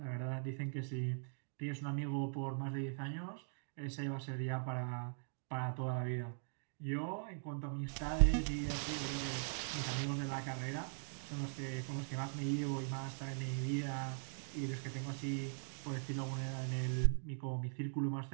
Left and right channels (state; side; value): silent; left; digital silence